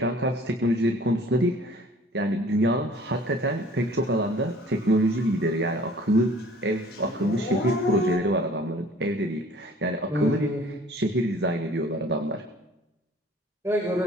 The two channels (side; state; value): both; normal; correlation 0.51